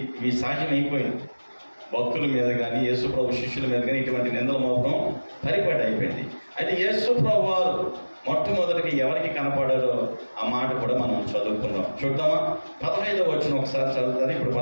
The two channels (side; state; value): both; inverted; correlation -1.00